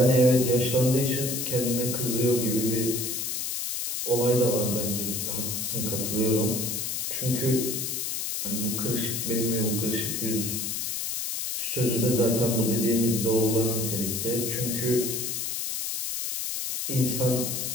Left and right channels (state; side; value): noise; left; hiss, 2 dB below the sound